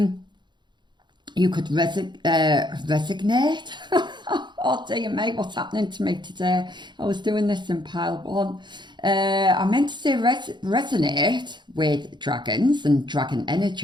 You could resignate. Oh dear me, what's happening to me today? I was doing this in pile 1. I meant to say resonate with dragons and dragon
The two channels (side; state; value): left; late; 0.22 ms